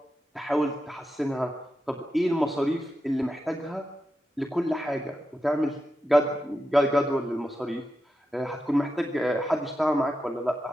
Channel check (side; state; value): both; normal; correlation 0.88